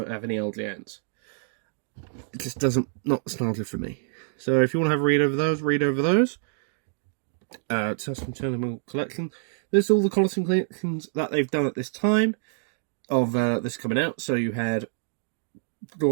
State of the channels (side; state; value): left; silent; digital silence